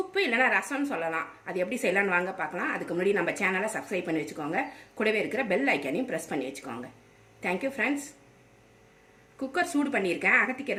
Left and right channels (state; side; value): identical; both; correlation 1.00